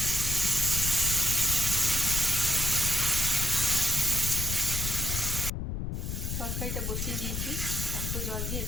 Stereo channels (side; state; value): left; noise; rumble, 3 dB below the sound